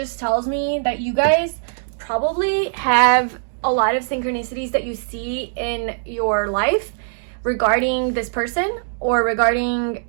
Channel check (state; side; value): silent; left; digital silence